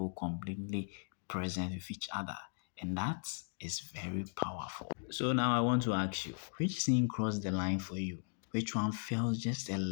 completely present with each other. And that is very powerful. So now I want to ask you, which scene crossed the line for you? Which one felt just a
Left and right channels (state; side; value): silent; right; digital silence